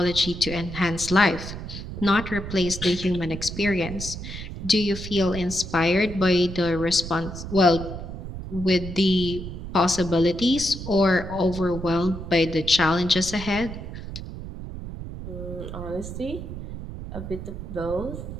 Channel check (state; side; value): noise; right; rumble, 9 dB below the sound